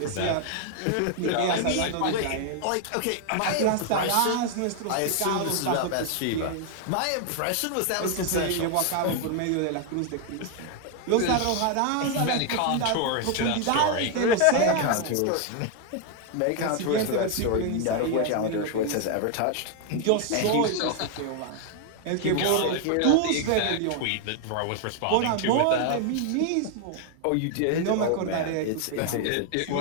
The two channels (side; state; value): both; different; correlation 0.00